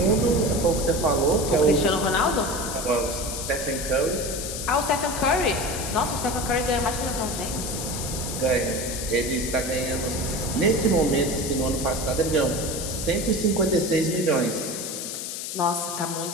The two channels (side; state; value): left; noise; hiss, 6 dB below the sound